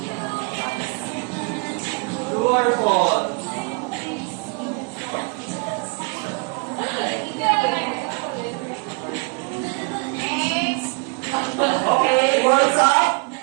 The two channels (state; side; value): quieter; left; 32.6 dB